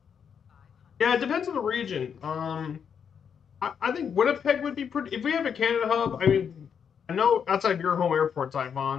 Yeah, it depends on the region. I think Winnipeg would be pretty. If we have a Canada hub, I mean, I know outside your home airport,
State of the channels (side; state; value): right; quieter; 7.3 dB